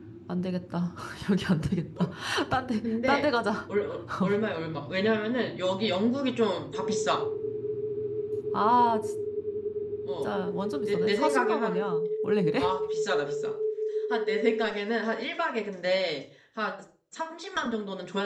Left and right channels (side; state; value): both; identical; correlation 1.00